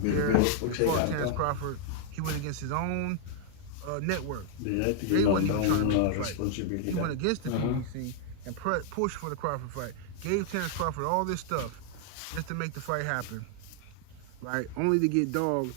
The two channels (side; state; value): both; different; correlation 0.00